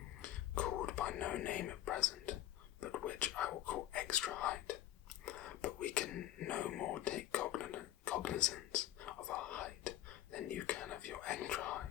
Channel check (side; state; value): right; quieter; 13.2 dB